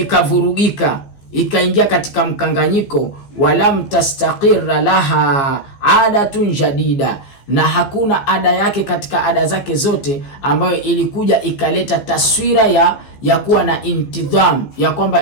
ikaingia katika mkanganyiko. Walam tastaqirra laha adatun jadida, na hakuna ada yake katika ada zake zote ambayo ilikuja ikaleta taswira ya kuwa na intidham, ya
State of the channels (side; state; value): right; late; 15 ms